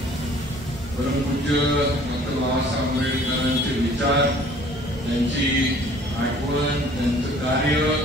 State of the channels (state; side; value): normal; both; correlation 0.53